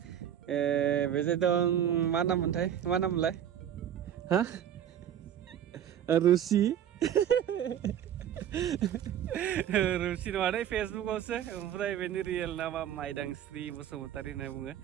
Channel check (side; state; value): left; quieter; 10.0 dB